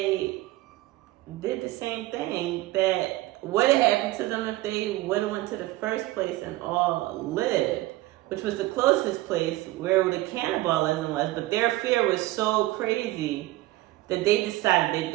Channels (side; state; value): left; quieter; 18.0 dB